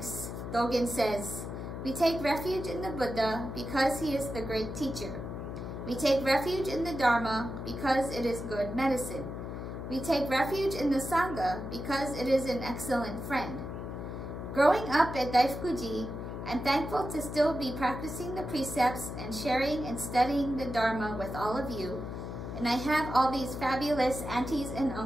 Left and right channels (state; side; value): noise; left; hum, 7 dB below the sound